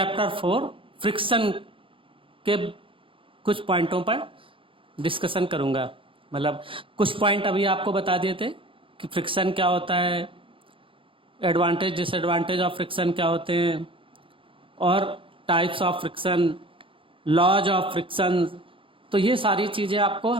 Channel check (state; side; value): late; left; 0.25 ms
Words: 4 फ्रिक्शन के कुछ पॉइंटों पर डिस्कशन करूंगा। मतलब कुछ पॉइंट अभी आपको बता दिए थे कि फ्रिक्शन क्या होता है, एडवांटेज डिसएडवांटेज ऑफ फ्रिक्शन क्या होते हैं, और types of friction, laws of friction. तो ये सारी चीज़ें आपको